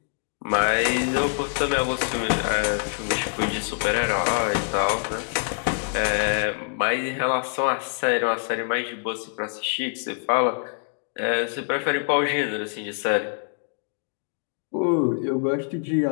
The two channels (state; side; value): silent; right; 62 dB below the other